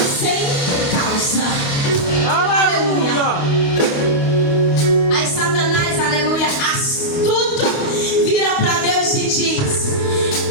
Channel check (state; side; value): late; right; 28 ms